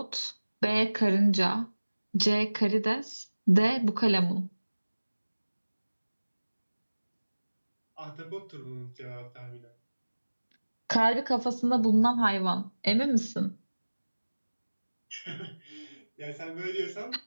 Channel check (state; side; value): inverted; both; correlation -1.00